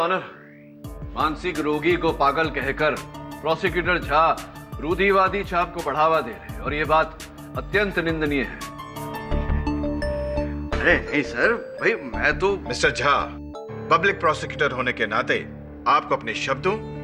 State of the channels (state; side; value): identical; both; correlation 1.00